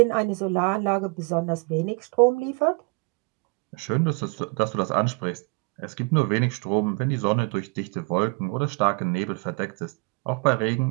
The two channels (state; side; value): quieter; left; 31.2 dB